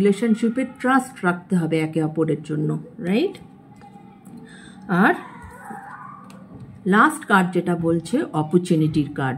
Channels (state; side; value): identical; both; correlation 1.00